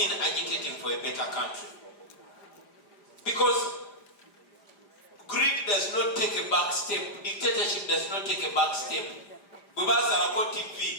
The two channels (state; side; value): late; right; 5.0 ms